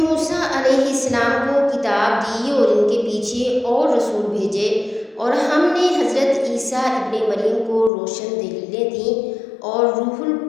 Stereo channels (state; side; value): drops out; right; at 7.9 s